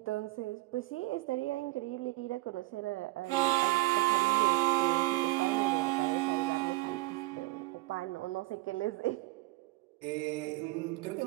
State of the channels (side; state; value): left; quieter; 21.8 dB